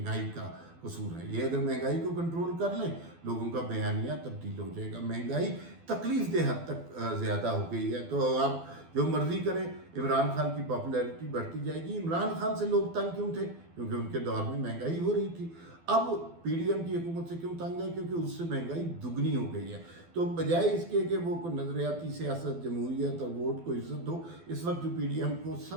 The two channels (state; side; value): late; left; 12 ms